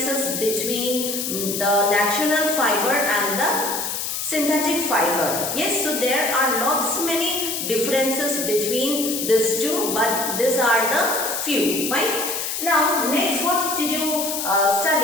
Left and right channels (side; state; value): left; noise; hiss, 3 dB below the sound